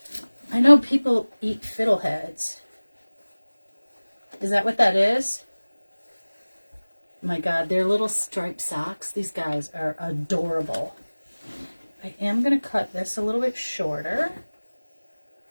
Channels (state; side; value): inverted; both; correlation -1.00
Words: I know people eat fiddleheads. Is that what that is? My God, they're little striped socks. These guys are adorable. I am going to cut this a little bit shorter.